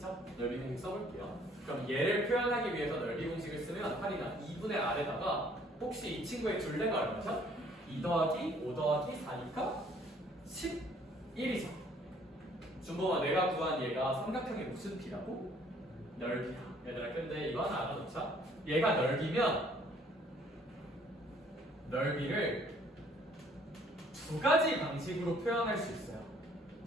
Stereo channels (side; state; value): both; normal; correlation 0.60